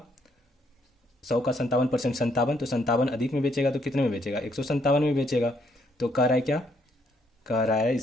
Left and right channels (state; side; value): normal; both; correlation 0.71